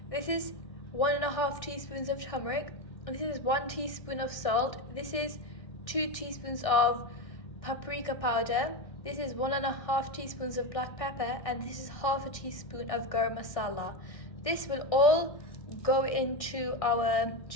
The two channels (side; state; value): right; late; 1.6 ms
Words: This is 1.5 teaspoons of turmeric. This is 1 teaspoon of salt. This is 2 teaspoons of paprika powder. This is 1.5 teaspoons of black pepper, and this is 1/2 teaspoon of garam masala. This will all go into our